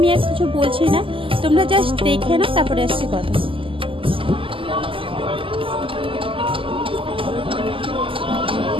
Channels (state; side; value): late; left; 0.25 ms